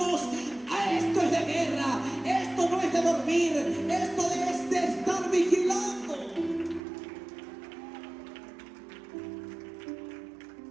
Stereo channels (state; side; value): drops out; left; at 6.8 s